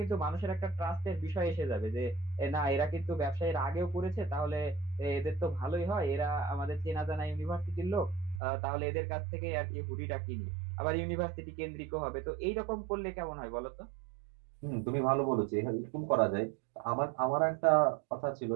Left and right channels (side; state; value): left; drops out; at 8.4 s